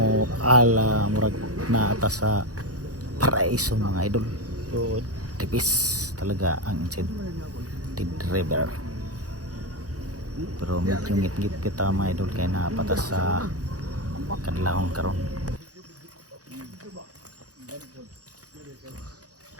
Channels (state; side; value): late; left; 0.67 ms